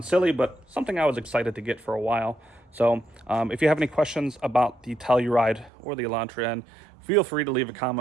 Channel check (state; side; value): drops out; left; at 5.7 s